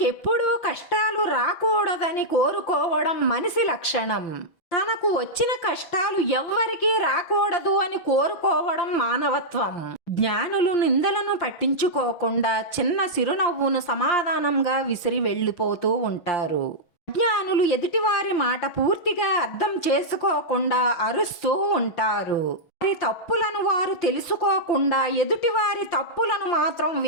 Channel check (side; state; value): right; late; 6.1 ms